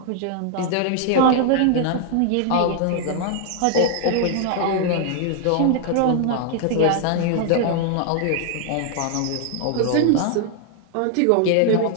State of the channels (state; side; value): different; both; correlation 0.00